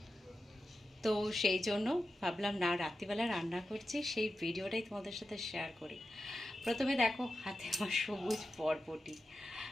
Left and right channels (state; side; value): normal; both; correlation 0.91